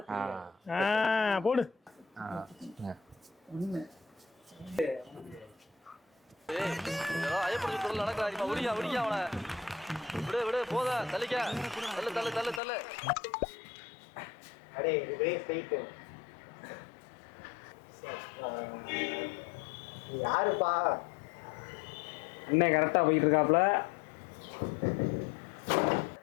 தெரியாது. போடு. அடே ஒரே ஸ்ட்ரைட். யாருப்பா? அண்ணன் கரெக்டா போயிட்டு இருக்காப்ல.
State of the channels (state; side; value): drops out; right; at 12.6 s